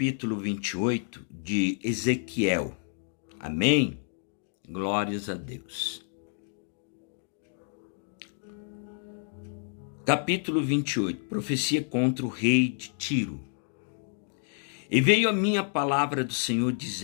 28 de Ezequiel. Amém? Glórias a Deus. Capítulo 28, profecia contra o rei de Tiro. E veio a minha palavra do Senhor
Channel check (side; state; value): right; silent; 58 dB below the other